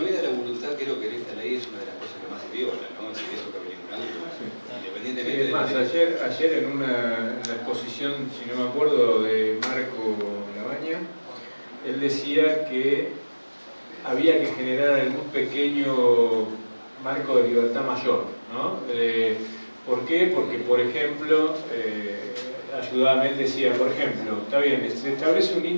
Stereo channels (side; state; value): both; inverted; correlation -1.00